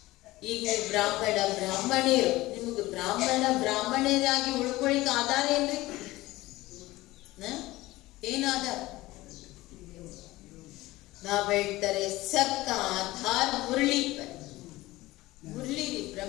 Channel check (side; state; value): right; quieter; 18.5 dB